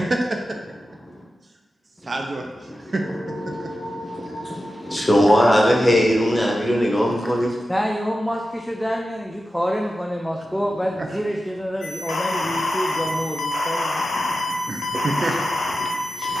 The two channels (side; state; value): both; normal; correlation 0.92